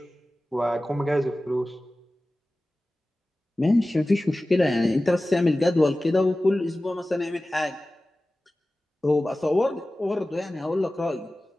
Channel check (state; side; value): normal; both; correlation 0.96